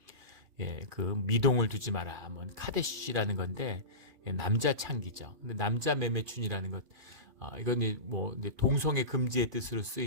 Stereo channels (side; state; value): left; late; 2.4 ms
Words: 그 미동을 두지 마라. 뭐 카데시라는 건데 남자 창기죠. 근데 남자 매매춘이라는 것, 이건 뭐 동성애 금지의 뜻으로